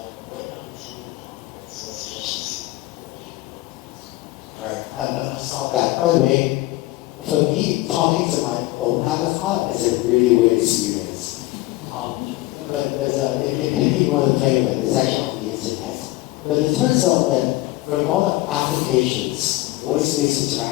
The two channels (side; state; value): right; quieter; 18.7 dB